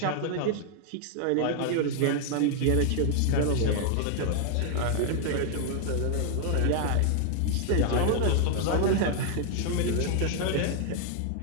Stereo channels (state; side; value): different; both; correlation 0.00